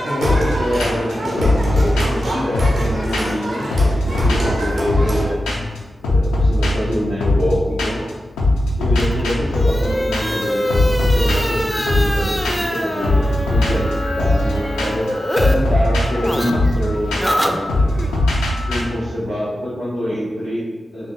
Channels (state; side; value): normal; both; correlation 0.91